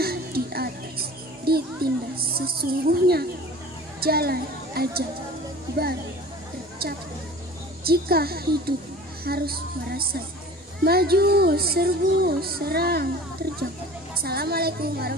di atas, ditindas sesungguhnya, jalan aja baru tercapai. Jika hidup harus merasa maju, serbu, serang, terjang. Assalamualaikum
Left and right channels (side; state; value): both; normal; correlation 0.42